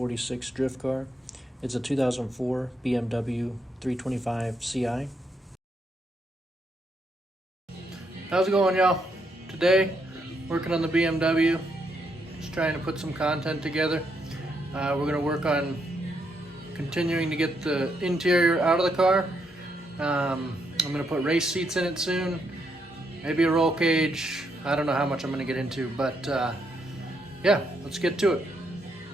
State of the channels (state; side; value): normal; both; correlation 0.77